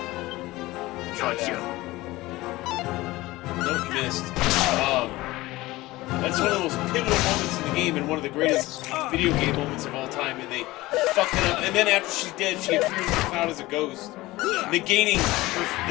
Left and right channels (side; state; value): right; quieter; 19.0 dB